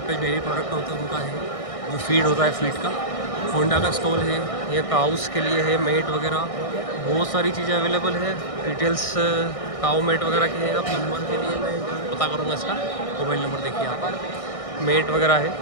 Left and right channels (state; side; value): late; right; 1.6 ms